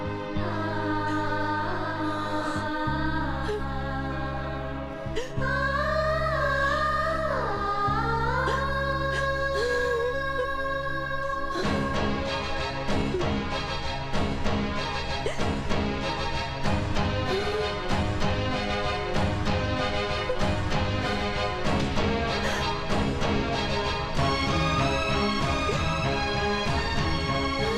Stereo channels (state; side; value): identical; both; correlation 1.00